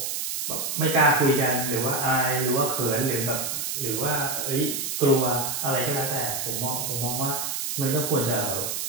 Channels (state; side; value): noise; right; hiss, 2 dB below the sound